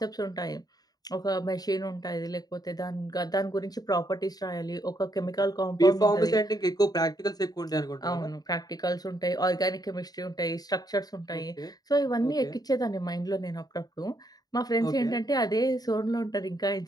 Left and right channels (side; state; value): right; late; 0.19 ms